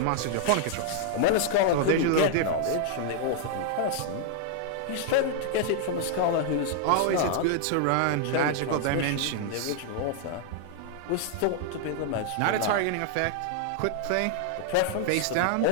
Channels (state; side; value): different; both; correlation 0.00